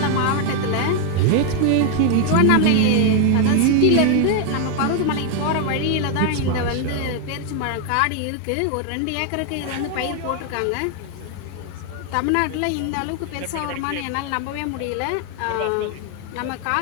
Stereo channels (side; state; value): both; different; correlation 0.00